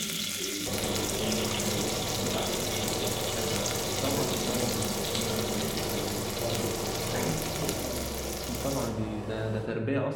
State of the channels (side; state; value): both; identical; correlation 1.00